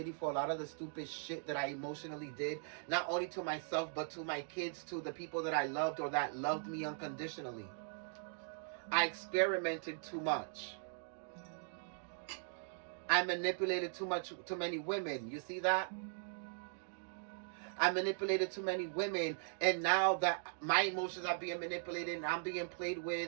for a lot of the stupid shit that I emotionally did, not only to myself, but to my kids, to the people that I loved or that loved me unconditionally. I experimented too much. I manipulated too many women. You see that? I manipulated too many women, and now that my emotions are being manipulated and I'm being played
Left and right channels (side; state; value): left; silent; digital silence